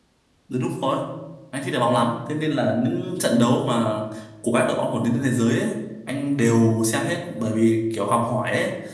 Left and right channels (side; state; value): both; identical; correlation 1.00